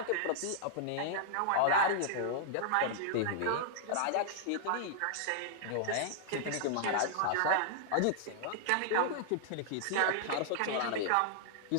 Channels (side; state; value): both; different; correlation -0.01